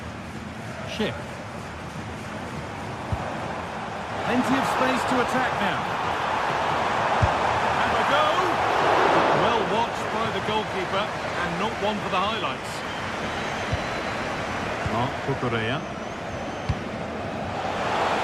Schick. Plenty of space to attack now. And a go! Well watched by the goalkeeper, and not one for the highlights. Cucurella.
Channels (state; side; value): identical; both; correlation 1.00